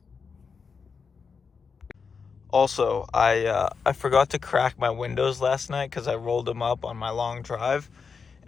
Also, I forgot to crack my windows last night because I rolled them up on my long drive,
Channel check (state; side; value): quieter; right; 5.5 dB